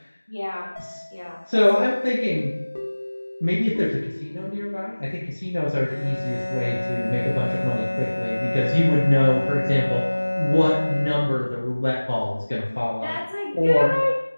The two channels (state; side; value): inverted; both; correlation -1.00